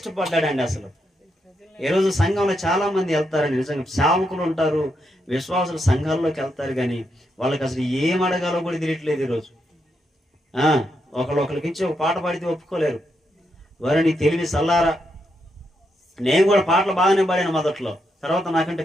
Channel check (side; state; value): both; normal; correlation 0.81